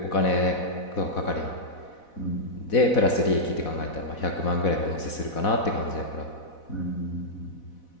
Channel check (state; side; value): late; right; 4.1 ms